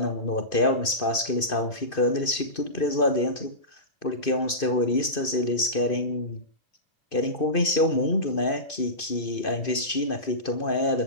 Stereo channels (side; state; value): right; late; 2.5 ms